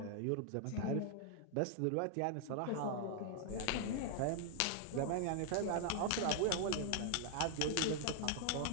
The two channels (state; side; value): different; both; correlation 0.00